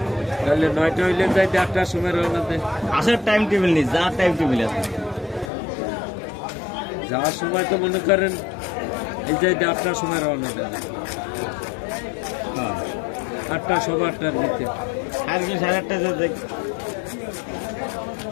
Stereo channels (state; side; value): drops out; right; at 5.5 s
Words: তাহলে 9টা হইলে যাই 8টার সময় রওনা দেয়। আসার টাইম টেবিল নেই, যাওয়ার টাইম টেবিল আছে। যাওয়ার সময় তো মনে করেন এই যে 8টার সময় রওনা দেয়, 8টা 8:15 দিতে, আজকে 8:30 যেতে